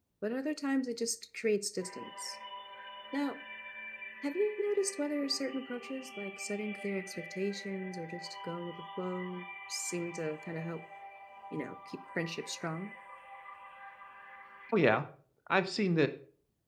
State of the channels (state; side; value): identical; both; correlation 1.00